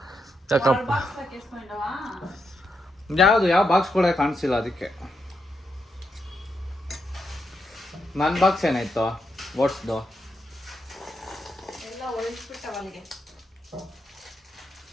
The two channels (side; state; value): both; normal; correlation 0.83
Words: ಯಾಕಪ್ಪ ಬಾಕ್ಸ್ ಹಾಕಿಸ್ಕೊಂಡವಾ ಯಾವ ಬಾಕ್ಸ್ ಕೂಡ ಕಾಣಿಸಿಲ್ಲ ಅದಕ್ಕೆ. ನನ್ನ ಬಾಕ್ಸ್ ಏನಾಯ್ತು ಓಟ್ಸ್ದು? ಎಲ್ಲ ಒಳಗಿಸ್ಬಿಟ್ಟವ ಅಲ್ಲಿಗೆ.